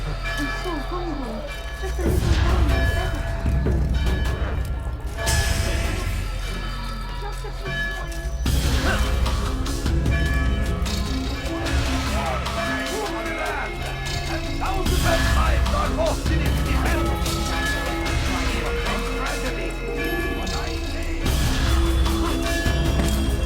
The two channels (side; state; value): both; identical; correlation 1.00